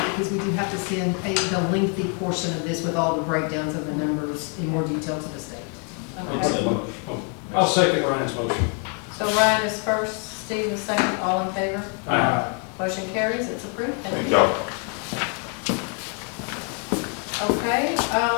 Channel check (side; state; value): right; quieter; 39.6 dB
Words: because we do have to send the lengthy portion of this with all the breakdowns of the numbers in more detail to the state. Okay. I'll second Ryan's motion. So Ryan is first, Steve is second, all in favor? Aye. Motion carries, it's approved. Thank Thank you. y'all. Okay, so